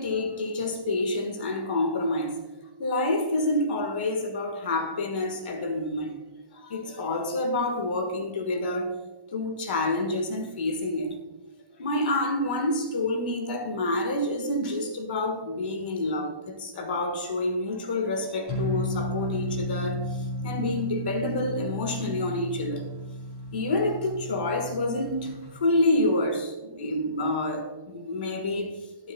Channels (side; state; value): left; late; 1.1 ms